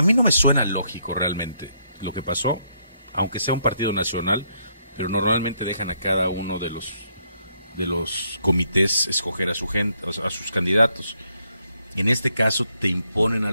mí no me suena lógico realmente lo que pasó, aunque sea un partido nacional, pero normalmente dejan a cada uno de los comités escoger a su gente, a sus candidatos. En este caso te imponen a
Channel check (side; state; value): both; inverted; correlation -0.74